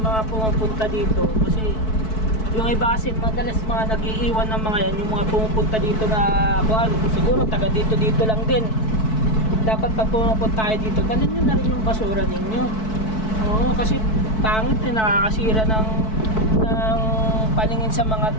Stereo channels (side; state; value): right; late; 4.6 ms